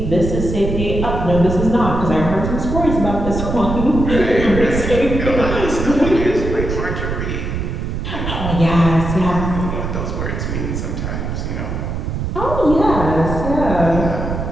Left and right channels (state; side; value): noise; right; rumble, 4 dB below the sound